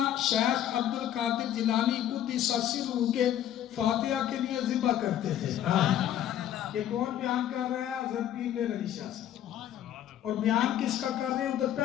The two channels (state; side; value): quieter; right; 11.2 dB